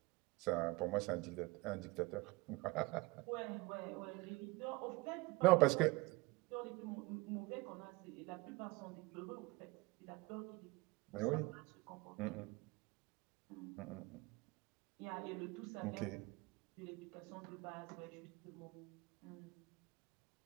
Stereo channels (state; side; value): quieter; left; 22.7 dB